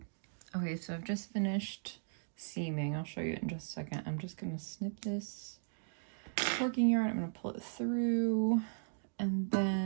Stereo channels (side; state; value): left; silent; digital silence